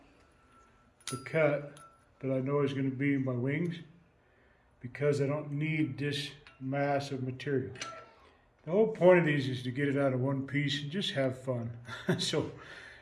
the cut that I know is going to be in my wings. because I don't need this mass of material. The whole point of these is to get it out of one piece and just have fun. So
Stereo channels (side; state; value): both; identical; correlation 1.00